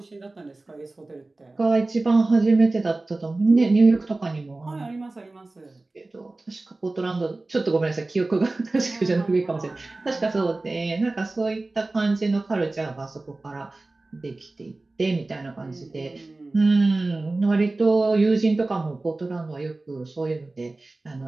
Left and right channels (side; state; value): left; quieter; 3.1 dB